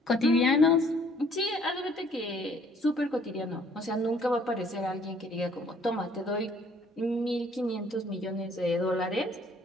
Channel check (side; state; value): both; normal; correlation 0.60